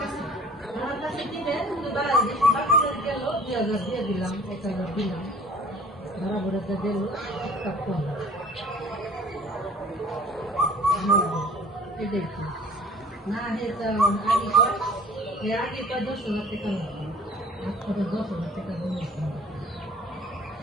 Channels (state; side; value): normal; both; correlation 0.49